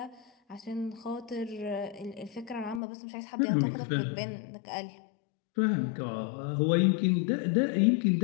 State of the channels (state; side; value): drops out; right; at 2.8 s